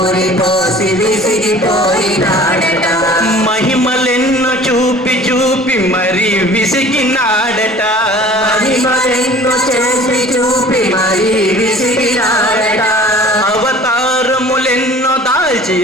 పోసి విసిగిపోయినాడట. మహిమలెన్నో చూపి చూపి మరి విసిగినాడట. మహిమలెన్నో చేసి చూపి మరి విసిగినాడట. అవతారములెన్నో దాల్చి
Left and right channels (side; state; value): both; normal; correlation 0.47